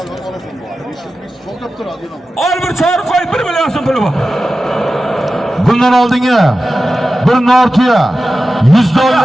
olasan bu. 500 ming so'ltab turadi, yo'q. Al bir çağır koy 1 milyon so'm puli bor. Bundan oldingi bir Nortiya 100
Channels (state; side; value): normal; both; correlation 0.94